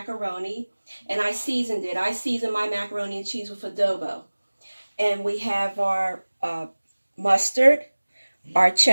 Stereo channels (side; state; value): both; inverted; correlation -1.00